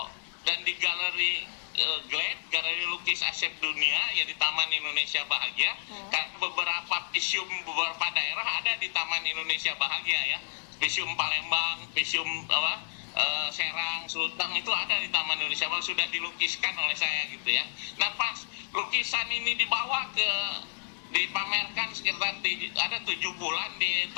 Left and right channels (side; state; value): right; silent; digital silence